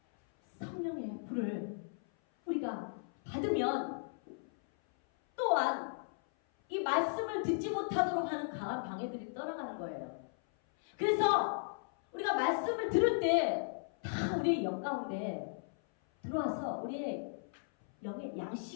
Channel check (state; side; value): silent; right; 54 dB below the other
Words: 성령의 불을 우리가 받으면 또한 이 말씀을 듣지 못하도록 하는 강한 방해들이 떠나가는 거예요. 그래서 우리가 말씀을 들을 때 다 우리의 영 가운데 들어와서 우리의 영의